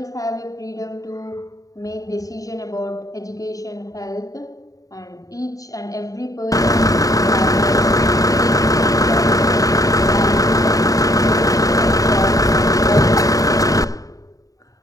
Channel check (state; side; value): late; right; 0.17 ms